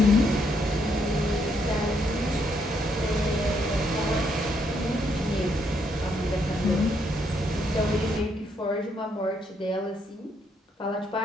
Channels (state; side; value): normal; both; correlation 0.74